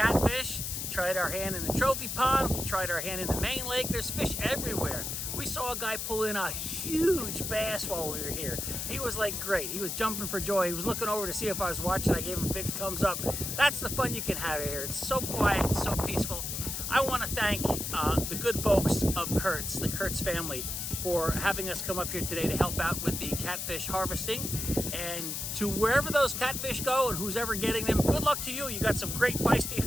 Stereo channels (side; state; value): left; noise; hiss, 4 dB below the sound